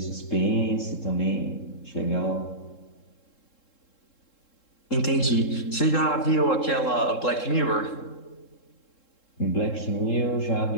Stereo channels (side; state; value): right; late; 3.7 ms